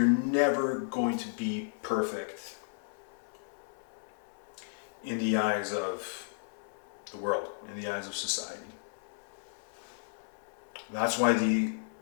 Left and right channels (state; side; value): silent; right; 55 dB below the other